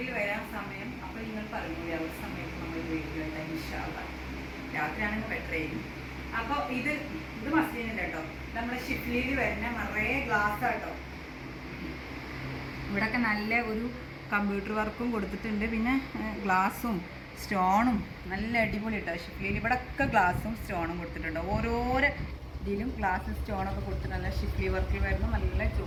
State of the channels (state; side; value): identical; both; correlation 1.00